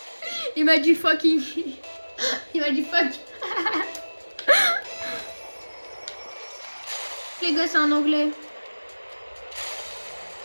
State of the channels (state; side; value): inverted; both; correlation -1.00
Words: Il m'a dit fucking. Il m'a dit fuck. Les gars, c'est en anglais.